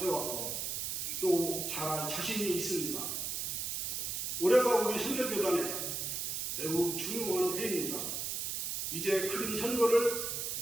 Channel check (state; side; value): noise; right; hiss, 2 dB below the sound